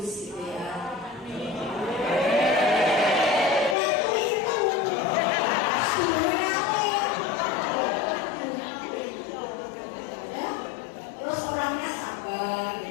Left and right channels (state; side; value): drops out; right; at 3.8 s